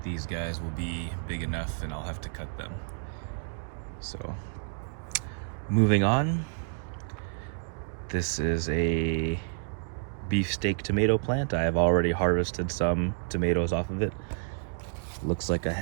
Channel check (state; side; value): silent; left; digital silence